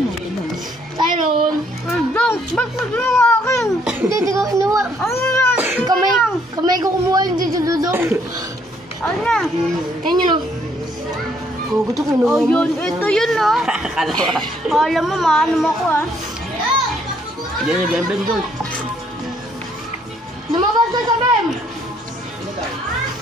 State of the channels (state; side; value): normal; both; correlation 0.67